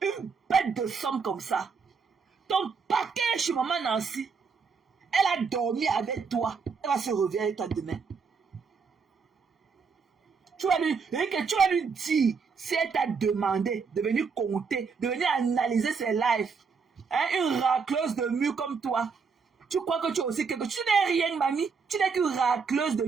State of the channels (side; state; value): left; quieter; 5.4 dB